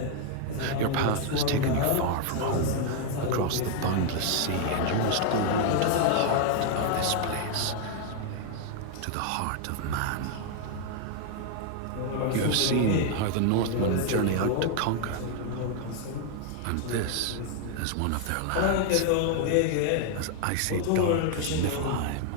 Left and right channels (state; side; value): different; both; correlation 0.00